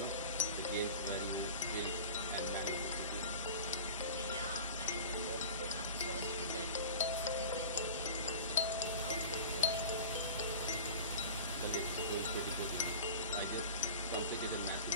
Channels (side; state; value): both; inverted; correlation -0.37